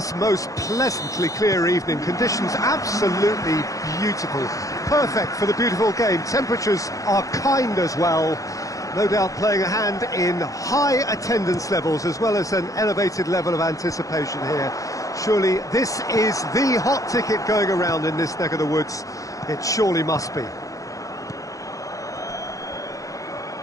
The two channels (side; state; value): right; late; 0.16 ms